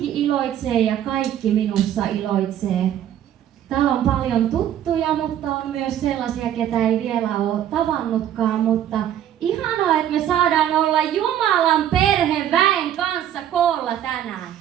iloitsee ja kaikki minussa iloitsee. Täällä on paljon tuttuja, mutta on myös sellaisia, ketä ei vielä ole tavannutkaan. Mutta ihanaa, että me saadaan olla Jumalan perheväen kanssa koolla tänään.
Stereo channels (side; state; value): left; quieter; 10.8 dB